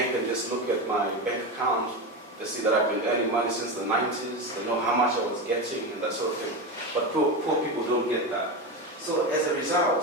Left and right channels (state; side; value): normal; both; correlation 0.18